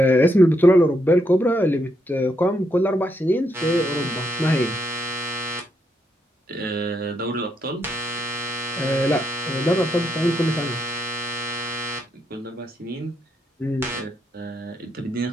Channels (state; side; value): normal; both; correlation 0.78